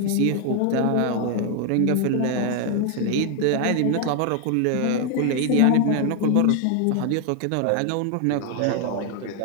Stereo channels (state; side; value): different; both; correlation 0.00